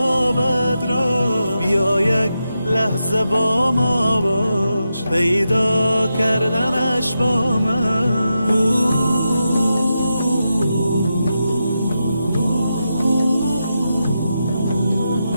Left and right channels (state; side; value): inverted; both; correlation -0.88